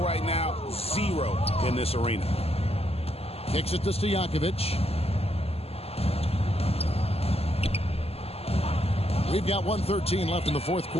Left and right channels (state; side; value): late; right; 0.29 ms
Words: right now, 0 in this arena. Kicks it to Stojakovic. We've got 1:13 left in the fourth